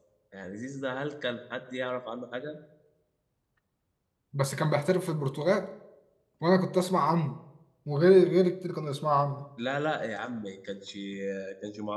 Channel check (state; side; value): identical; both; correlation 1.00